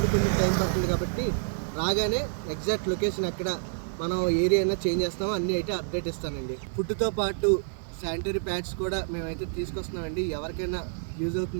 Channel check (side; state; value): left; silent; 59 dB below the other